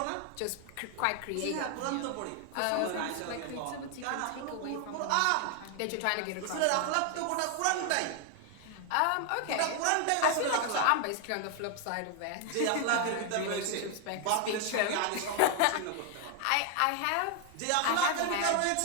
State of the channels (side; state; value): both; different; correlation 0.00